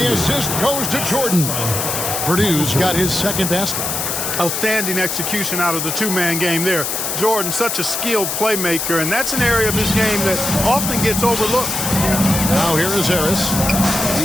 assist goes to Jordan. Purdue's got his second basket. Outstanding execution out of the two-man game there. Jordan, such a skilled playmaker, and that's an area of his game that often gets overlooked. Now here is Harris.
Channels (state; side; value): noise; left; hiss, 2 dB below the sound